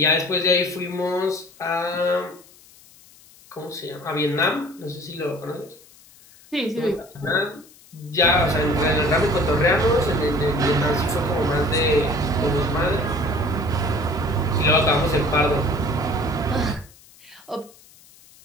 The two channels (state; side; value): noise; left; hiss, 25 dB below the sound